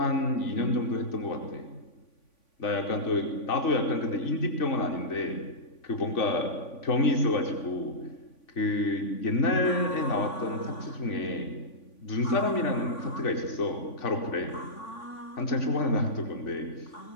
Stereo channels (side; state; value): right; late; 3.5 ms